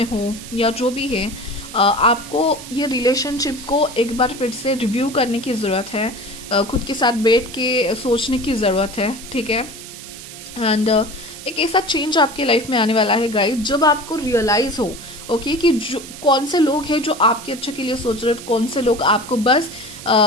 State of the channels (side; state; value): right; noise; hiss, 14 dB below the sound